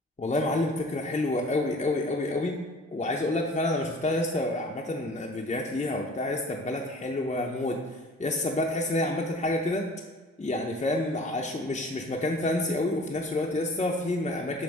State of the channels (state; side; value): normal; both; correlation 0.47